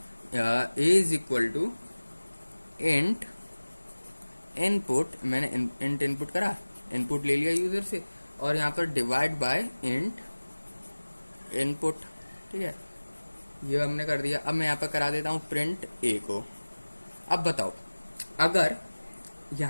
a is equal to int input. मैंने इंट इनपुट करा, इनपुट ले लिया यूजर से, और यहाँ पर डिवाइड बाय इंट इनपुट। ठीक है, ये हमने कर दिया। अब मैं यहाँ पर करा देता हूँ प्रिंट ए को। अब बताओ, अगर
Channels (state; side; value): inverted; both; correlation -1.00